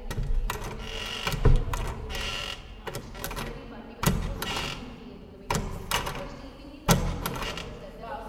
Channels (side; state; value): both; identical; correlation 1.00